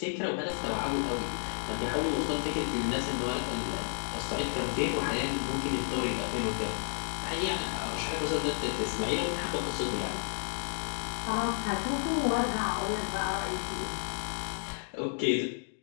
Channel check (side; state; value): right; silent; digital silence